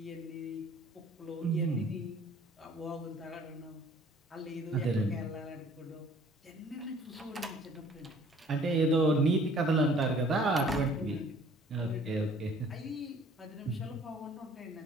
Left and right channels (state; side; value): normal; both; correlation 0.54